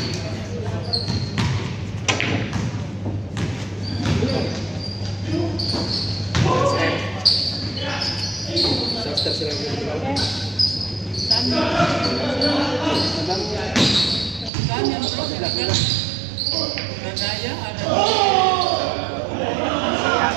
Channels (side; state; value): left; drops out; at 14.5 s